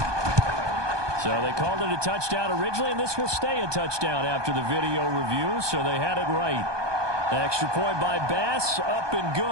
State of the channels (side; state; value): left; late; 1.2 ms